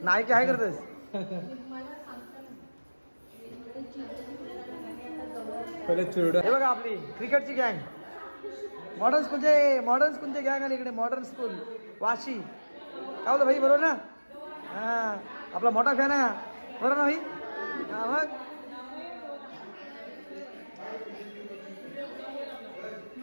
नाही की आहे करतोस? हे बघा आपली क्रिकेटची गँग, मॉडर्न स्कूलचे गँग आली इकडे। मॉडर्न स्कूल वाशी, काय होतं भाई? बरोबर ना? हा आपला मोठा फॅन आहे, बरोबर ना भाई? हा मग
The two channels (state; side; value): inverted; both; correlation -1.00